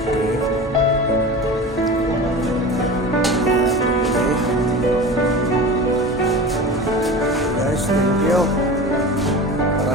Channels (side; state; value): both; normal; correlation 0.33